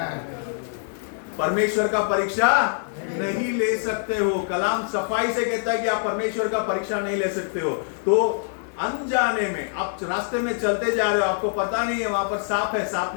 परमेश्वर का परीक्षा नहीं ले सकते हो। कलाम सफाई से कहता है कि आप परमेश्वर का परीक्षा नहीं ले सकते हो। तो अनजाने में आप रास्ते में चलते जा रहे हो, आपको पता नहीं है वहां पर सांप है, सांप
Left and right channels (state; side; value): silent; right; digital silence